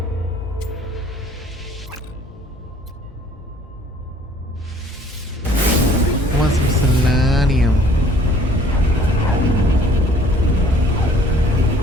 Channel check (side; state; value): both; normal; correlation 0.56